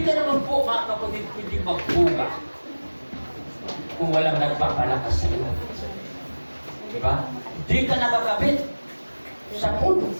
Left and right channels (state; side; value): inverted; both; correlation -1.00